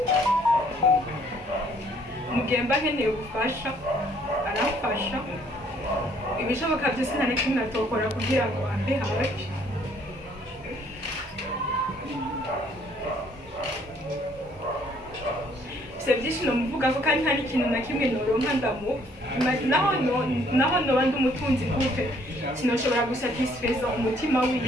mugemba nkeneye ubufasha aramfasha ibishoboka byose nta na kimwe atokora kugira ngo ambe hafi byinshi nomuvuga ko kandi nta n'ikintu na kimwe noronka naho noba ndi umutunzi gute sinoshobora gusatisfeza umutima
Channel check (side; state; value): both; normal; correlation 0.63